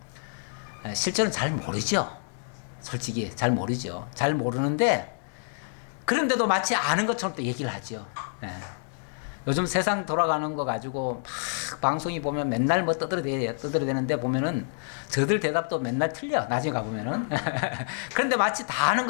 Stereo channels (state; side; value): silent; right; 60 dB below the other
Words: 실제로는 잘 모르죠. 솔직히 잘 모르죠. 잘 모르는데, 그런데도 마치 아는 것처럼 또 얘기를 하죠. 예. 요즘 세상 돌아가는 거 가지고 막 방송이 보면 맨날 뭐 떠들어대는데 보면은 저들 대답도 맨날 틀려. 나중에 가보면은. 그런데 마치 다 아는